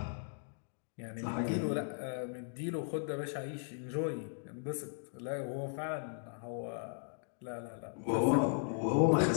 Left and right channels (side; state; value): right; silent; digital silence